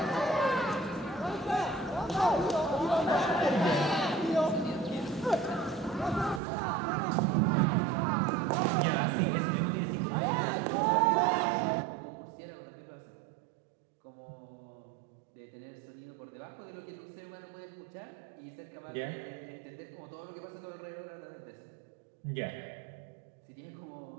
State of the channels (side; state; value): left; drops out; at 6.4 s